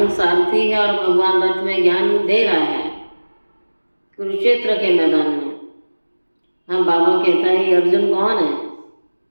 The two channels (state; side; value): inverted; both; correlation -1.00